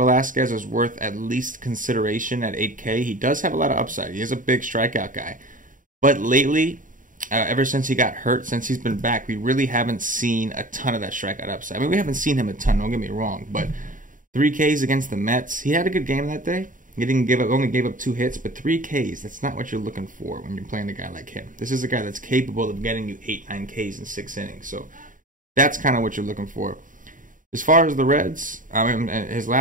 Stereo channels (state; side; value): late; left; 0.38 ms